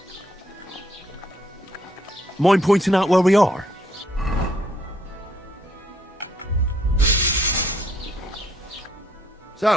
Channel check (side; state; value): both; normal; correlation 0.69